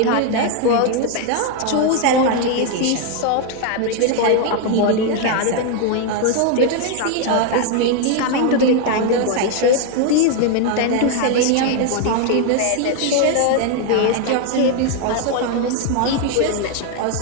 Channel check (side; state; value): both; different; correlation 0.01